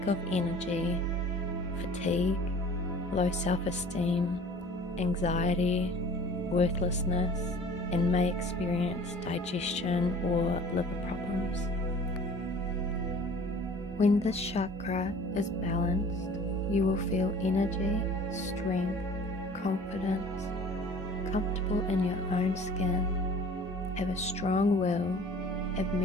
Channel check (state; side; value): normal; both; correlation 0.46